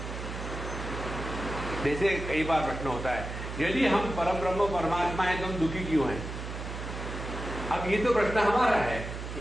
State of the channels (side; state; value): right; noise; hum, 7 dB below the sound